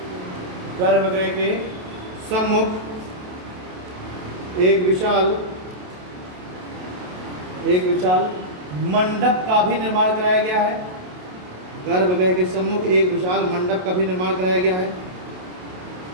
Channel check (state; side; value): late; left; 28 ms